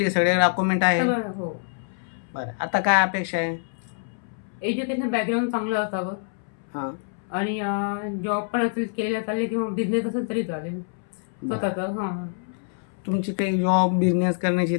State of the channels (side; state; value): right; silent; 61 dB below the other